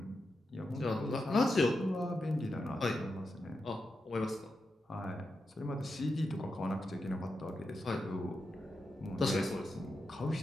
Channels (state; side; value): normal; both; correlation 0.88